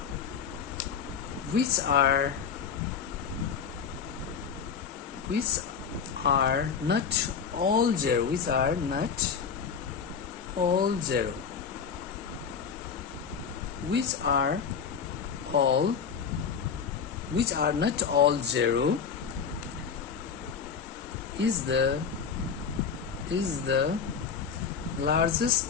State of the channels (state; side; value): quieter; right; 6.6 dB